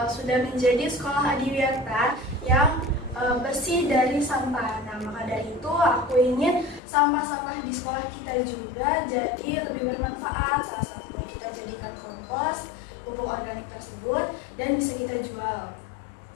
sudah menjadi sekolah adiwiyata yang bersih dari sampah. Nah, maka dari itu aku ingin sampah-sampah di sekolah kita juga jadi lebih bermanfaat. Salah satunya kita jadikan kompos, pupuk organik tersebut, dan bisa kita jual.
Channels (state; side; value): drops out; right; at 6.8 s